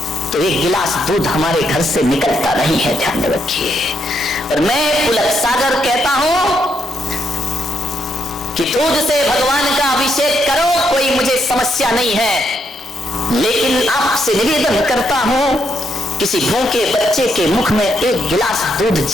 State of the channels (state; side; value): normal; both; correlation 0.77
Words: तो एक गिलास दूध हमारे घर से निकलता नहीं है। ध्यान रखिए। और मैं पुलक सागर कहता हूं कि दूध से भगवान का अभिषेक करो, कोई मुझे समस्या नहीं है, लेकिन आपसे निवेदन करता हूं किसी भूखे बच्चे के मुख में एक गिलास दूध